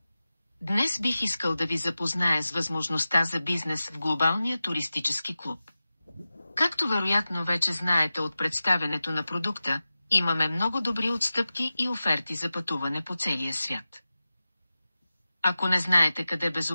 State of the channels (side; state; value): both; inverted; correlation -0.95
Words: Днес бих искал да ви запозная с възможността за бизнес в глобалния туристически клуб. Както вероятно вече знаете от представянето на продукта, имаме много добри отстъпки и оферти за пътуване по целия свят. Ако не знаете къде